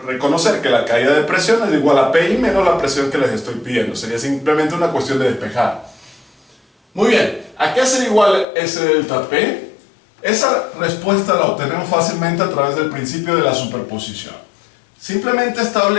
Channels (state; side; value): drops out; right; at 8.5 s